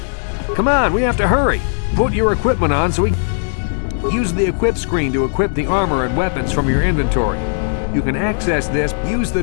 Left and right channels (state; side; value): silent; right; 63 dB below the other